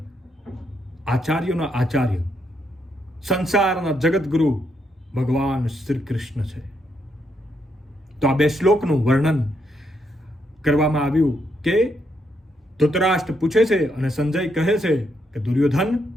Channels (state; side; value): normal; both; correlation 0.78